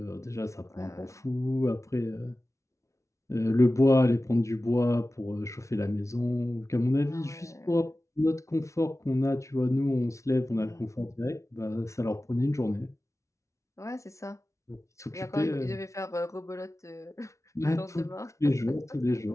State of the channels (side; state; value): right; late; 0.14 ms